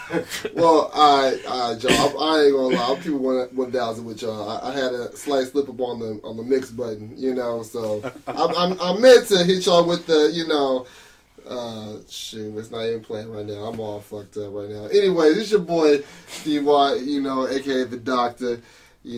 Well, all right, Joe. I ain't gonna lie. I'm keeping 1,000 with y'all. I had a slight slip up on the mix button, so I meant to hit y'all with the, shoot, it's not even playing right now. I'm all fucked up right now. Anyway, this is your boy D-Y, aka the Doctor.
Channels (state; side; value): identical; both; correlation 1.00